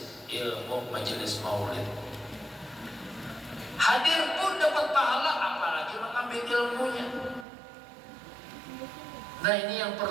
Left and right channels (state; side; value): drops out; left; at 7.5 s